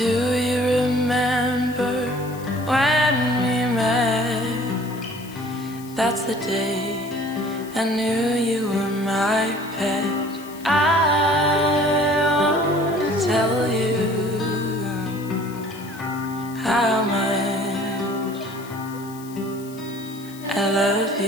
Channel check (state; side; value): noise; left; hiss, 20 dB below the sound